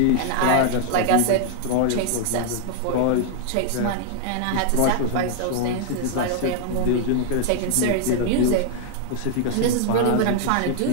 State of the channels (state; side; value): different; both; correlation -0.01